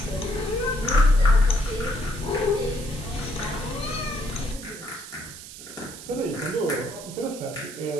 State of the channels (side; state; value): right; noise; hiss, 13 dB below the sound